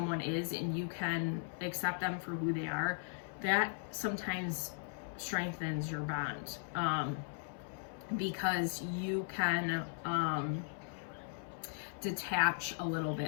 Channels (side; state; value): right; silent; 53 dB below the other